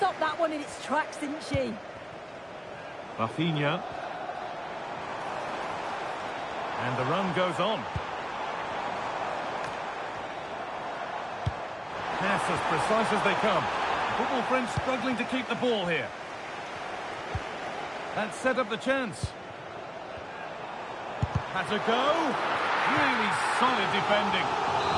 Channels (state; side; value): identical; both; correlation 1.00